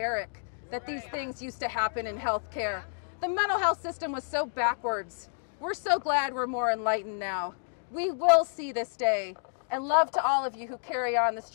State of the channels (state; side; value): silent; right; digital silence